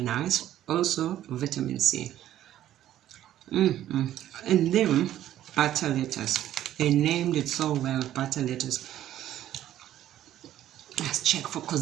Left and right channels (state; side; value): quieter; left; 12.4 dB